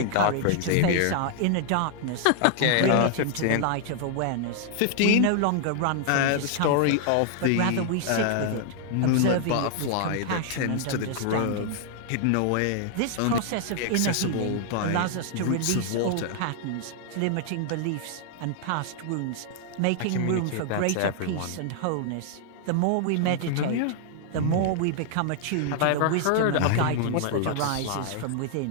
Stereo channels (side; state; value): both; different; correlation 0.00